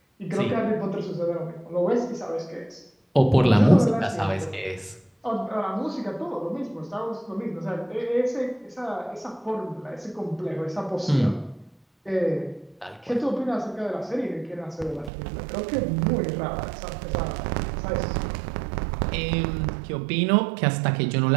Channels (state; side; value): drops out; left; at 15.1 s